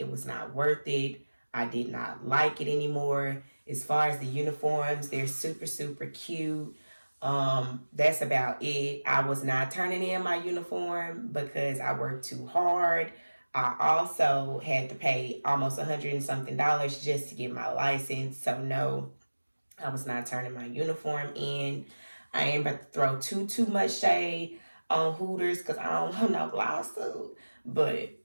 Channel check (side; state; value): both; inverted; correlation -1.00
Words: was not worth it. I did not like it anymore. As far as the uniforms, they're super, super cute. That's about it. I was not turning in my uniform because I worked too hard. I also had to pay almost $100 and something just to get my license. So no, I was not turning my uniform in. I ain't about to throw too much shade on Hooters because I don't want no lawsuit. But